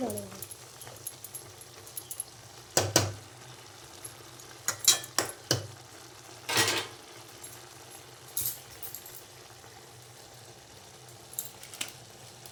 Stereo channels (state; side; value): identical; both; correlation 1.00